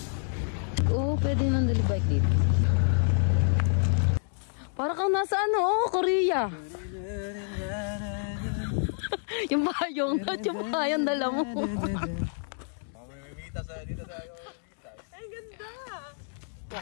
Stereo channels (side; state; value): right; silent; digital silence